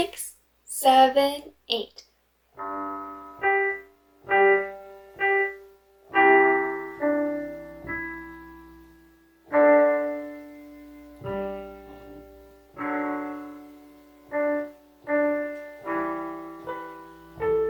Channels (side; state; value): both; identical; correlation 1.00